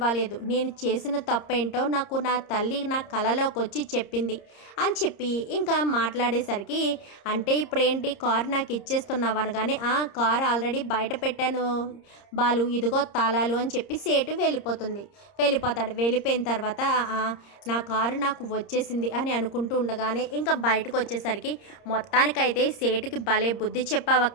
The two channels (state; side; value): late; right; 30 ms